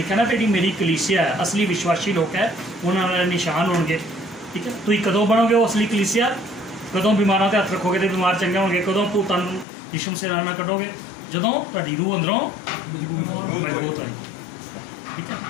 ਨਾ ਜਿਹੜੀ ਮੇਰੀ ਕਲੀਸਿਆ ਹੈ, ਅਸਲੀ ਵਿਸ਼ਵਾਸੀ ਲੋਕ ਹੈ, ਉਹਨਾਂ ਨਾਲ ਨਿਸ਼ਾਨ ਹੋਣਗੇ। ਠੀਕ ਹੈ। ਤੁਸੀਂ ਕਦੋਂ ਬਣੋਗੇ ਉਹ ਅਸਲੀ ਕਲੀਸਿਆ? ਕਦੋਂ ਬਿਮਾਰਾਂ 'ਤੇ ਹੱਥ ਰੱਖੋਗੇ ਤੇ ਬਿਮਾਰ ਚੰਗੇ ਹੋਣਗੇ? ਕਦੋਂ ਭੂਤਾਂ ਨੂੰ ਯਿਸੂ ਮਸੀਹ ਨਾਲ ਕੱਢੋਗੇ? ਜਦੋਂ ਤੁਹਾਡੀ ਰੂਹ ਅੰਦਰੋਂ ਮਜ਼ਬੂਤ ਹੋਏਗੀ। ਠੀਕ ਹੈ।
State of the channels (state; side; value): drops out; right; at 9.7 s